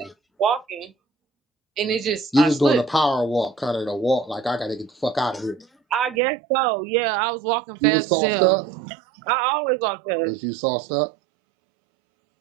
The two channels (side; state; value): left; drops out; at 6.2 s